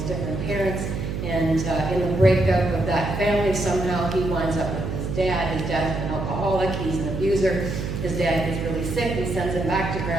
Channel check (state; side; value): noise; right; hum, 4 dB below the sound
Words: different parents. And in the breakup of that family, somehow he winds up with his dad. His dad's an alcoholic, he's an abuser. His dad gets really sick and sends him back to